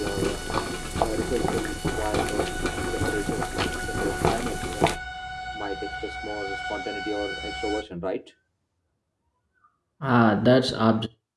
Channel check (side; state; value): both; identical; correlation 1.00